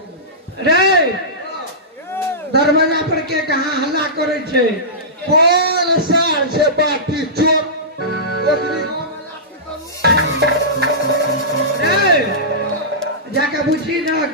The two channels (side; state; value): both; normal; correlation -0.18